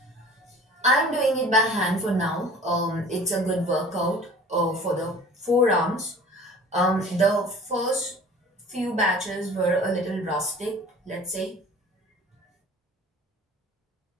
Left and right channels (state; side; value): normal; both; correlation 0.45